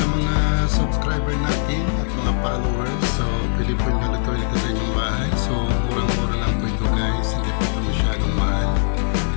mga subscriber natin at mga followers, so pwede po nyo lutuin ito sa inyong bahay. So, murang-mura lang po ito guys, hindi po ito masyadong mahal.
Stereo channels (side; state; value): right; silent; digital silence